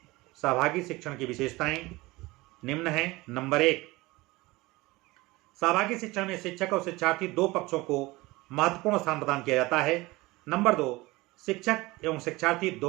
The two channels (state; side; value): quieter; left; 21.2 dB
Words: सहभागी शिक्षण की विशेषताएं निम्न हैं। नंबर 1, सहभागी शिक्षण में शिक्षक और शिक्षार्थी दो पक्षों को महत्वपूर्ण स्थान प्रदान किया जाता है। नंबर 2, शिक्षक एवं शिक्षार्थी